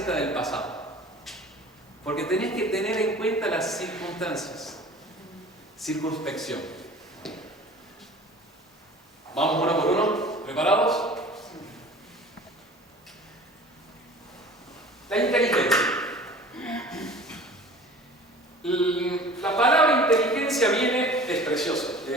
del pasado. Porque tenés que tener en cuenta las circunstancias. Circunspección. Vamos uno por uno. ¿Preparados? La inteligencia. La palabra inteligencia viene, es precioso.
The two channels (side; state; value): both; normal; correlation 0.44